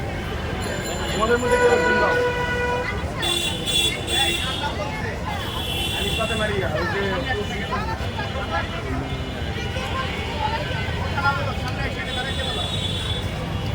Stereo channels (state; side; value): identical; both; correlation 1.00